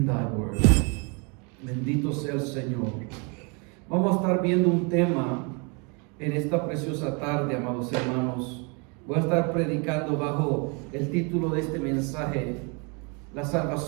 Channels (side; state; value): left; quieter; 33.1 dB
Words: thy word. Bendito sea el Señor. Vamos a estar viendo un tema en esta preciosa tarde, amados hermanos. Voy a estar predicando bajo el título de este mensaje: la